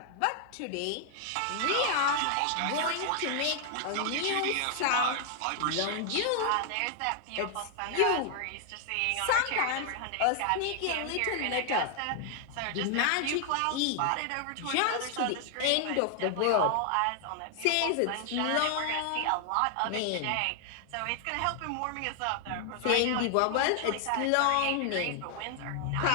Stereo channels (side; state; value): both; different; correlation 0.00